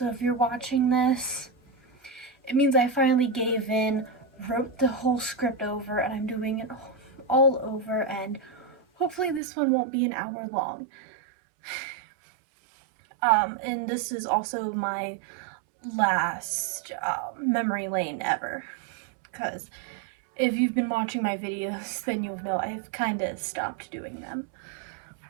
if you're watching this, it means I finally gave in, wrote the whole script over, and I'm doing it all over, and hopefully this one won't be an hour long. And this is also my last memory lane ever, because if you've been watching my videos, then you'll know I've kind of stopped doing them.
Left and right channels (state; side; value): drops out; left; at 9.4 s